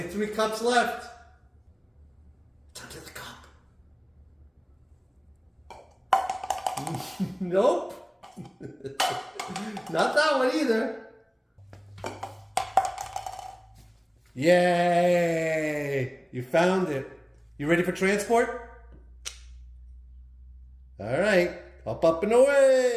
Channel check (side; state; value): both; identical; correlation 1.00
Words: 3 cups left. It's under the cup. Nope. Not that one either. Yay! You found it. You ready for transport? All right. Up and